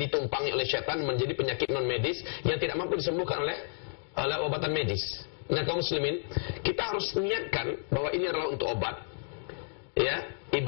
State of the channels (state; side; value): silent; right; digital silence